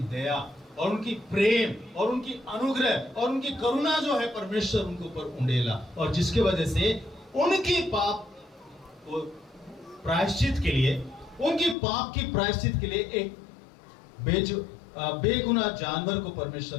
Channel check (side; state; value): right; drops out; at 11.8 s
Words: दया और उनकी प्रेम और उनकी अनुग्रह और उनकी करुणा जो है परमेश्वर उनके ऊपर उंडेला, और जिसके वजह से उनकी पाप को प्रायश्चित के लिए, उनकी पाप की प्रायश्चित के लिए एक बेगुनाह जानवर को